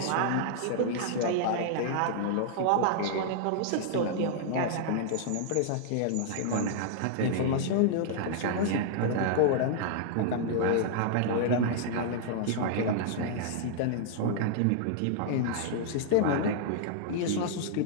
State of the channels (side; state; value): both; different; correlation -0.01